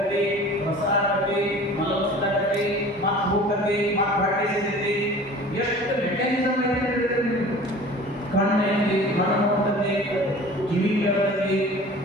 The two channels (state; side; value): normal; both; correlation 0.43